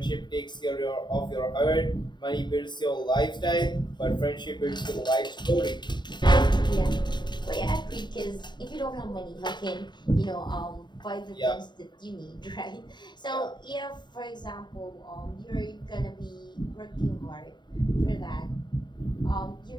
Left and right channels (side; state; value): right; late; 0.22 ms